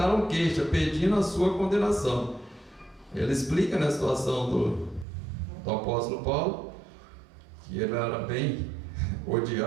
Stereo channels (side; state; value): left; drops out; at 5.1 s